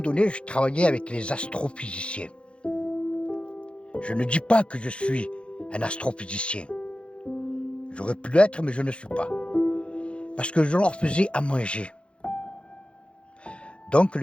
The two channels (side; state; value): right; late; 0.058 ms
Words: je travaillais avec les astrophysiciens. Je ne dis pas que je suis un astrophysicien. J'aurais pu l'être, mais je ne suis pas. Parce que je leur faisais à manger. Donc